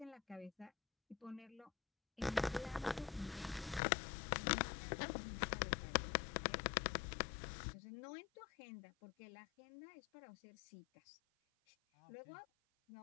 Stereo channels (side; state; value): right; drops out; at 3.8 s